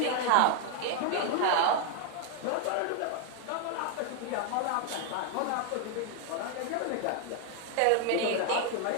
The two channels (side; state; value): both; different; correlation 0.00